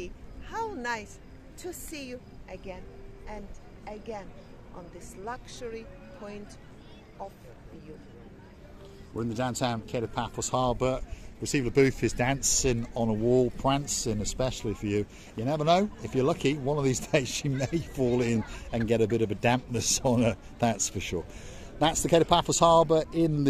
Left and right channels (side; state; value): both; identical; correlation 1.00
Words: How nice to see you again and again on this luxury point of view. We're in the downtown Kid of Paphos Harbour. Gracieviala-Booth is dancing on a wall, prancing especially for you. You never know, if you're lucky, one of these days she may fall in and get a bit of a dampness on her, that's for sure. That's the Kid of Paphos Harbour in